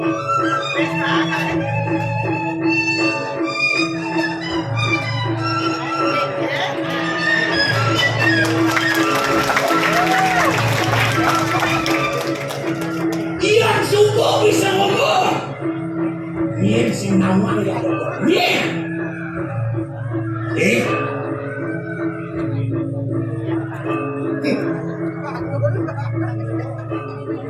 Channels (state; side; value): identical; both; correlation 1.00